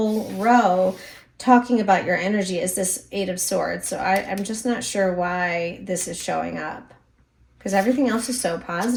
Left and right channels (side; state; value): both; identical; correlation 1.00